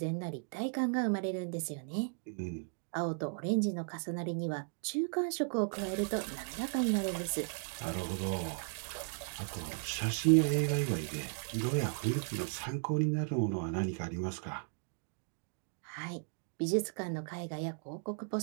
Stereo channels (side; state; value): left; silent; 54 dB below the other